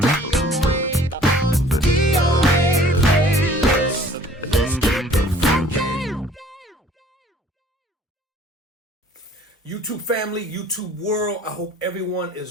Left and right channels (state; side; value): normal; both; correlation 0.53